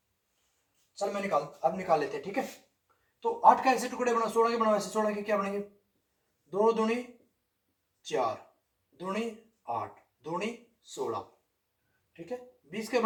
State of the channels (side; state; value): both; identical; correlation 1.00